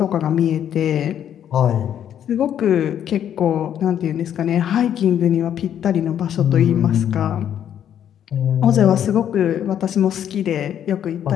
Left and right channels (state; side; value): quieter; right; 9.8 dB